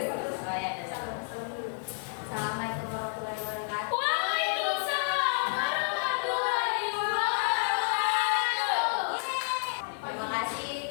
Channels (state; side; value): silent; right; digital silence